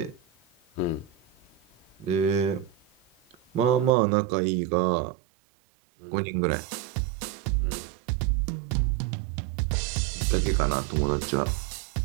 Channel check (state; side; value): drops out; left; at 3.9 s